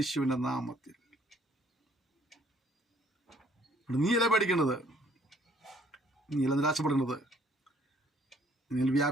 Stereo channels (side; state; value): both; normal; correlation 0.62